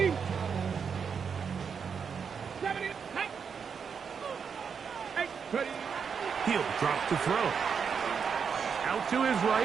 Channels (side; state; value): left; quieter; 6.4 dB